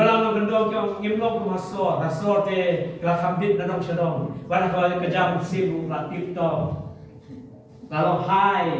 no gendong yang ngimlong ke masor, rasor te kelas hambit nanong sedong. Pada kalau kejam sibu latif to. Kalau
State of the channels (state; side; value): identical; both; correlation 1.00